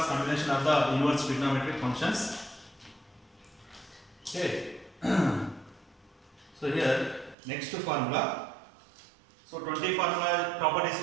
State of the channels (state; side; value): drops out; left; at 7.4 s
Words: combination of the inverse trigonometric functions. Okay. So here next formula. So 20 formula properties